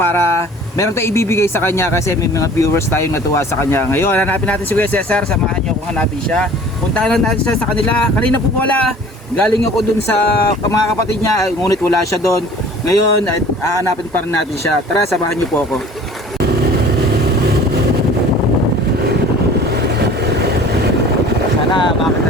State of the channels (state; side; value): normal; both; correlation 0.47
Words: meron tayong ibibigay sa kanya kasi may mga viewers tayong natuwa sa kanya. Ngayon, hanapin natin si Kuya Cesar. Samahan niyo kung hanapin siya. Puntahan lang natin siya sa kanila. Kanina po wala. Galing ako dun sa mga kapatid niya, ngunit wala siya doon. Ngayon, hanapin pa rin natin siya. Tara, samahan niyo po ako. Sana